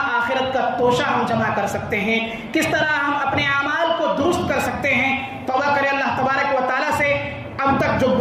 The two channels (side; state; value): both; identical; correlation 1.00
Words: آخرت کا توشہ ہم جمع کر سکتے ہیں، کس طرح ہم اپنے اعمال کو درست کر سکتے ہیں۔ توبہ کریں اللہ تبارک و تعالیٰ سے، اب تک جو